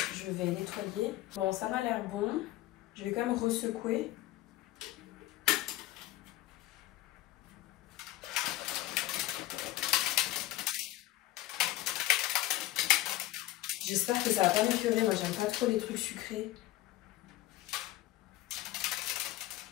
je vais nettoyer. Bon, ça m'a l'air bon. Je vais quand même resecouer. J'espère que ça va pas m'écœurer. Moi, j'aime pas trop les trucs sucrés.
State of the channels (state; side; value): quieter; right; 16.5 dB